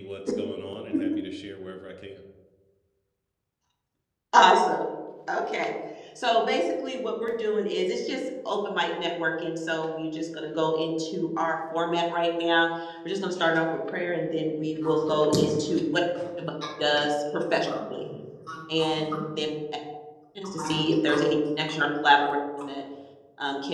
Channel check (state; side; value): identical; both; correlation 1.00